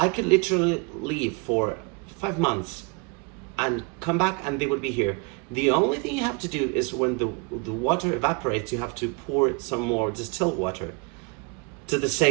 could literally leave for 5 months and come back and they would be here. The only thing you have to do is when the water evaporates, you have to pour some more distilled water to the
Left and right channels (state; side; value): quieter; left; 30.9 dB